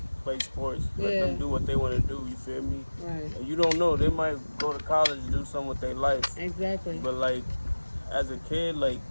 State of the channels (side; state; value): both; inverted; correlation -1.00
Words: play sports, let them do what they want to do. You feel me? Right. And you don't know, they might go to college and do something with their life. Exactly. But like as a kid, like